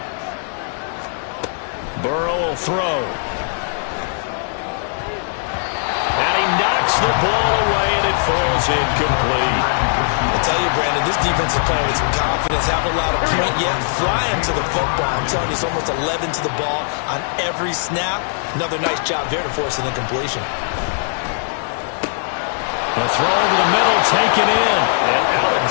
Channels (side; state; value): right; silent; digital silence